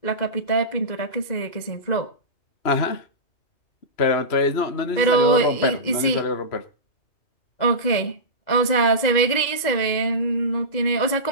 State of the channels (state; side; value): late; right; 2.0 ms